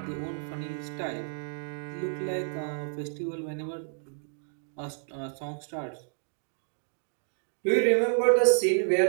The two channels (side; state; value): left; silent; digital silence